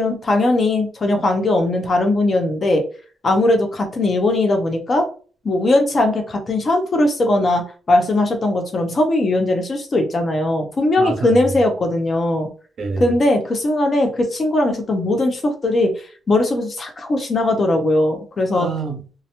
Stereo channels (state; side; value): normal; both; correlation 0.81